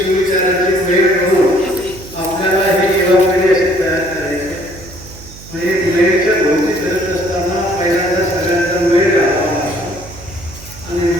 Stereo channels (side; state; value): right; noise; hum, 18 dB below the sound